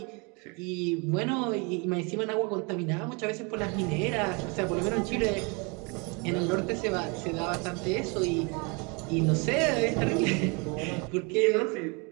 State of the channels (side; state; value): left; quieter; 31.1 dB